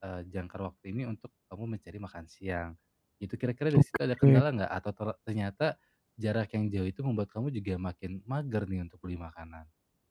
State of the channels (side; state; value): both; identical; correlation 1.00